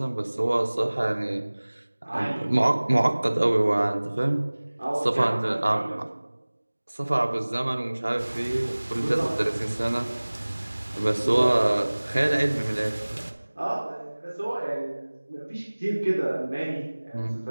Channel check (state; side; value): inverted; both; correlation -1.00